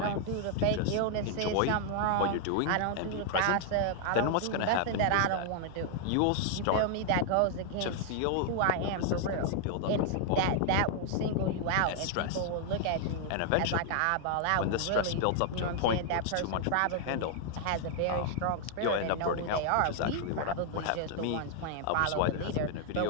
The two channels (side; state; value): both; different; correlation 0.00